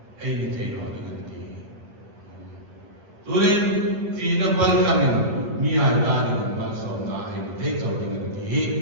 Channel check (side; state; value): left; late; 10 ms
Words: Ni teno diganti. Turin fina bal jamlo, miya dan mal sona. Ni teno diganti.